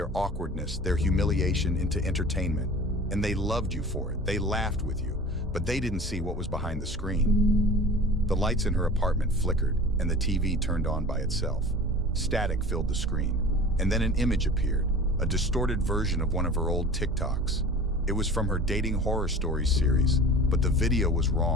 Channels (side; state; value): both; normal; correlation 0.39